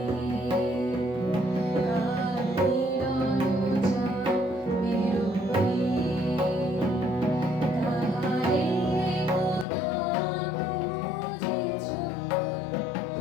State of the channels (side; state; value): right; drops out; at 9.7 s